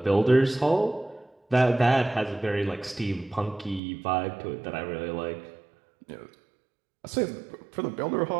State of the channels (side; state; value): left; drops out; at 3.8 s